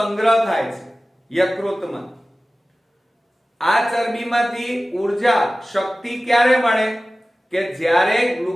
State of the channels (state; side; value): normal; both; correlation 0.97